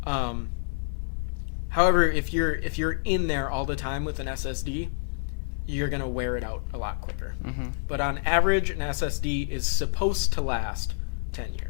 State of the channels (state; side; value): silent; right; 57 dB below the other